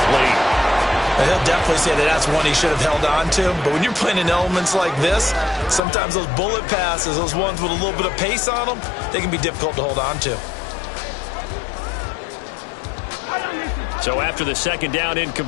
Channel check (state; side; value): drops out; right; at 5.8 s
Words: He'll definitely say that that's one he should have held on to. But when you're playing in elements like this, sometimes those bullet passes, those ones with a little bit of pace on them, they can be difficult to hold on to. So after the 2nd down